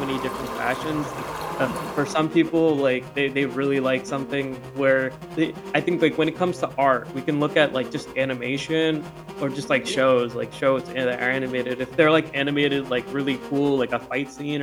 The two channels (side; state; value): both; identical; correlation 1.00